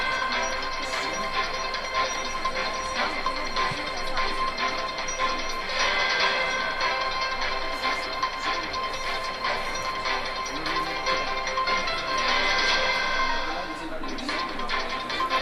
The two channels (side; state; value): both; identical; correlation 1.00